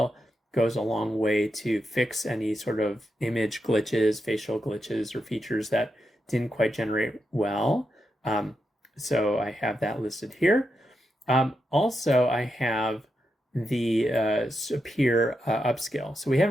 goes a long way to fix any sort of image glitches, facial glitches, or features that didn't quite generate well. So I have that listed here. Also, I have the Sapir Upscale. So we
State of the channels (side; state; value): both; normal; correlation 0.86